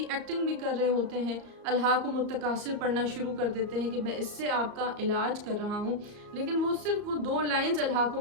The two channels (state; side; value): late; left; 34 ms